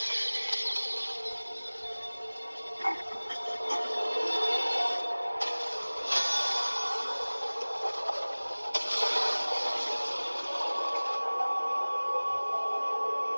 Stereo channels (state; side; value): inverted; both; correlation -1.00